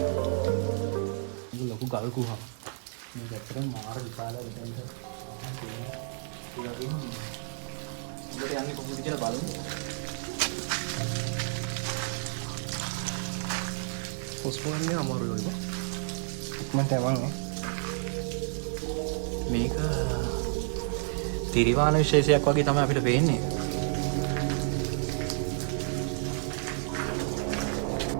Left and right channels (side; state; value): left; silent; 57 dB below the other